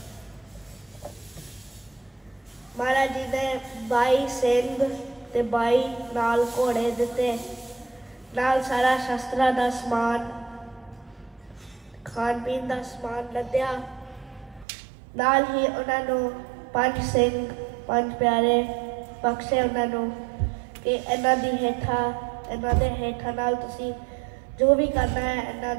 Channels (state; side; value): drops out; left; at 14.7 s